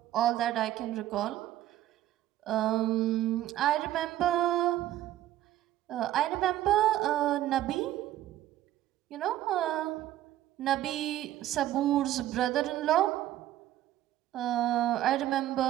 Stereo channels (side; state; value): left; quieter; 13.5 dB